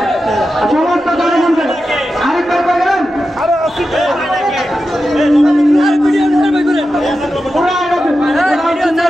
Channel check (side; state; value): both; normal; correlation 0.91